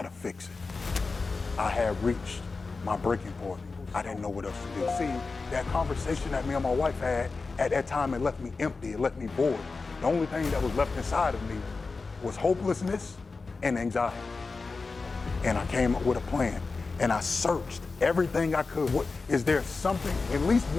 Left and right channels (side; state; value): right; quieter; 4.1 dB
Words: fix it. I had reached my breaking point. I didn't know what else to do. See, that conversation that me and my wife had, at that time it left me empty, it left me void. The only thing that was left inside of me was hopelessness and anxiety. And I came up with a plan and I searched everything I could. Is there something, at least